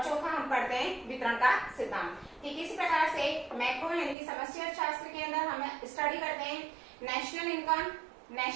चौथा हम पढ़ते हैं वितरण का सिद्धांत। ठीक इसी प्रकार से मैक्रो यानी कि समष्टि अर्थशास्त्र के अंदर हम स्टडी करते हैं national income,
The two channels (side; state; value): left; drops out; at 4.2 s